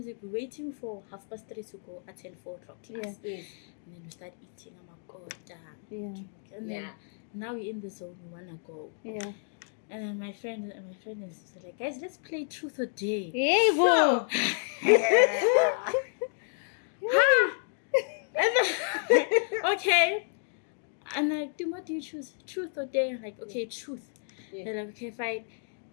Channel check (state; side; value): silent; right; 57 dB below the other